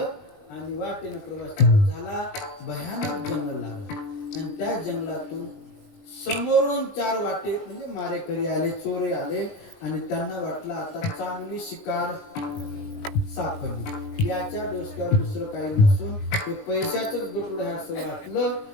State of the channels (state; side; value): late; right; 20 ms